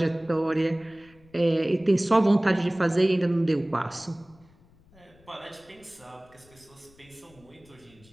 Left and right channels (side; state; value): left; noise; rumble, 29 dB below the sound